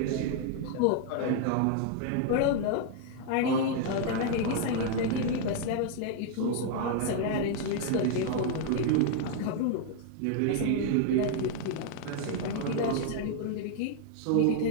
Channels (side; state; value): both; different; correlation 0.00